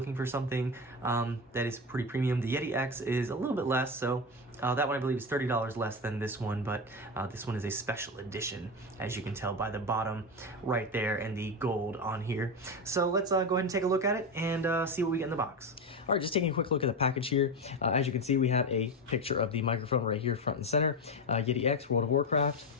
for something that is pretty premium, the Yeti X is a little bit less. So that one I believe is $30 less than this one, but this one is a special edition, as you can tell by the bottom right there and the gold on here. So let's go ahead and take a look at it and see what we get in the box. All right, just taking a quick look at the package here. As you can see, we have a picture of the microphone right here, front and center. Yeti X, World of Warcraft.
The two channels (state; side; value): normal; both; correlation 0.17